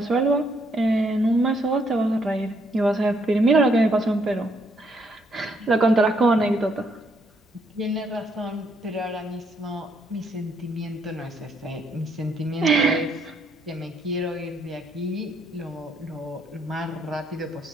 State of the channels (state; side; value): normal; both; correlation 0.72